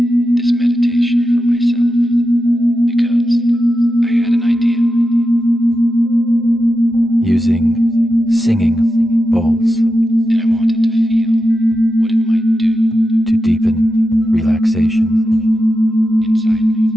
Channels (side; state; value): both; normal; correlation 0.90